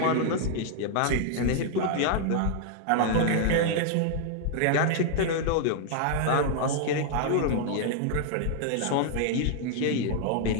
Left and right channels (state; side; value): different; both; correlation -0.01